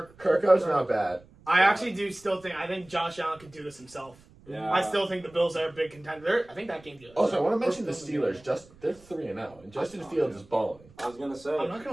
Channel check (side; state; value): right; noise; rumble, 25 dB below the sound